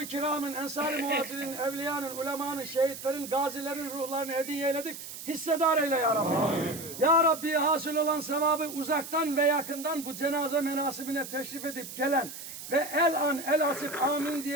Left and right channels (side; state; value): right; noise; hiss, 11 dB below the sound